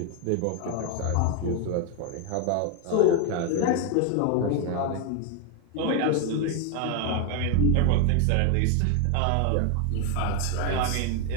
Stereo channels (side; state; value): both; different; correlation 0.01